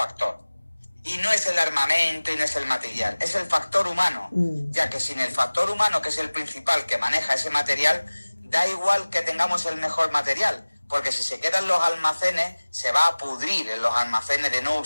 Y no es el armamento y no es el material, es el factor humano. Ya que sin el factor humano, que es el principal que maneja ese material, da igual que tengamos el mejor material. Porque si se quedan los almacenes, se va a pudrir en los almacenes de no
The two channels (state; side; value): inverted; both; correlation -1.00